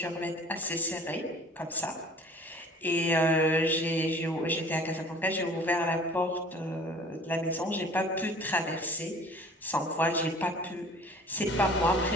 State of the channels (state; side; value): normal; both; correlation 0.48